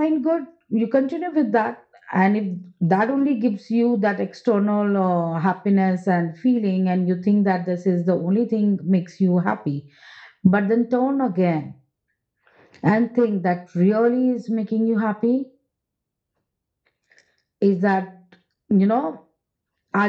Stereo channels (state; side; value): identical; both; correlation 1.00